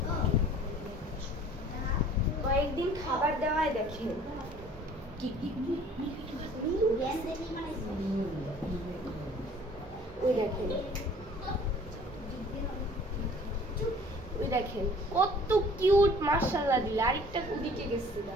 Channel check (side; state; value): both; normal; correlation 0.51